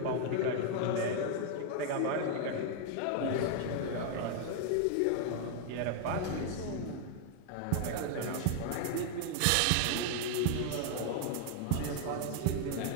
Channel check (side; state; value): both; different; correlation 0.00